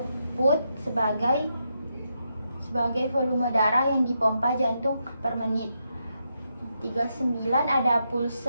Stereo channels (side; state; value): both; inverted; correlation -0.83